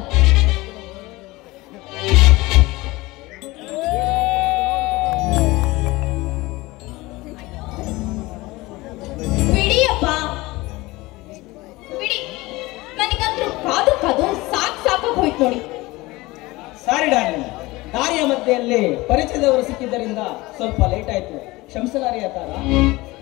ಬಿಡಿಯಪ್ಪ ಬಿಡಿ, ನನಗಂತೂ ಕಾದು ಸಾಕಾಗಿ ಹೋಯ್ತು ನೋಡಿ. ಸಾರಿ ಡಾರ್ಲಿಂಗ್, ದಾರಿಯ ಮಧ್ಯೆಯಲ್ಲಿ ಪರಿಚಯದವರು ಸಿಕ್ಕಿದ್ದರಿಂದ ಸ್ವಲ್ಪ ಲೇಟ್ ಆಯ್ತು, ಕ್ಷಮಿಸಲಾರಿ ತಾರ.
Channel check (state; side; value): quieter; right; 20.9 dB